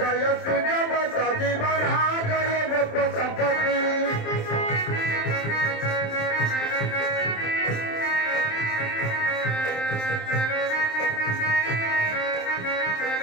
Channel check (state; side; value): late; right; 27 ms